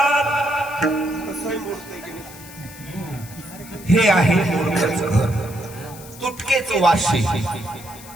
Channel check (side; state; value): left; noise; hiss, 17 dB below the sound